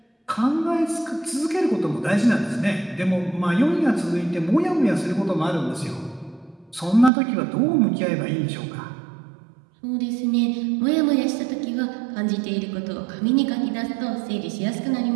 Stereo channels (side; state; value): left; drops out; at 7.1 s